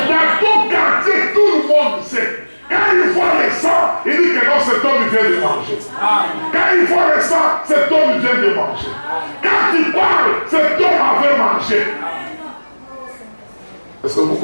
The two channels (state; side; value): inverted; both; correlation -1.00